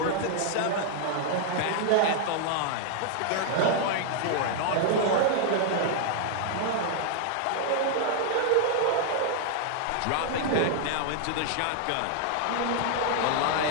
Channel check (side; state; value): both; different; correlation 0.00